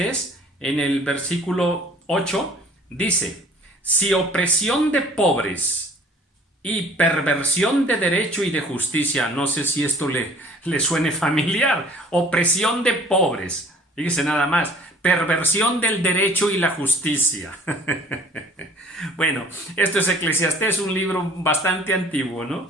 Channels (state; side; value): normal; both; correlation 0.52